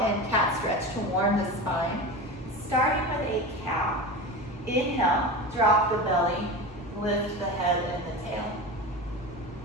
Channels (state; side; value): normal; both; correlation 0.27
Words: and cat stretch to warm the spine. Starting with a cow. Inhale, drop the belly, lift the head and the tail.